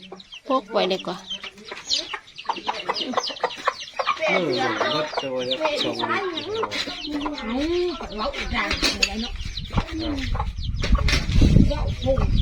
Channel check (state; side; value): identical; both; correlation 1.00